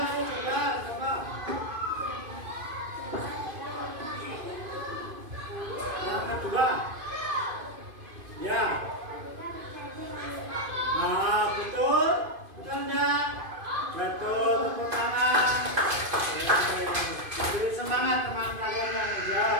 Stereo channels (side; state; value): left; late; 2.5 ms